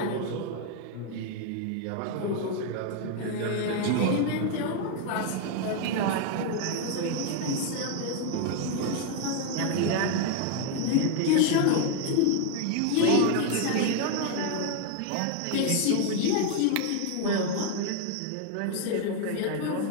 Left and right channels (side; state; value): both; different; correlation 0.01